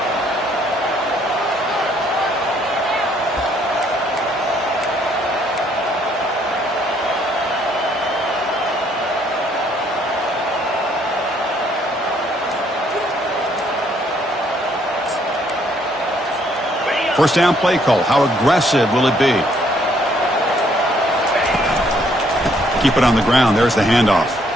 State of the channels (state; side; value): normal; both; correlation 0.67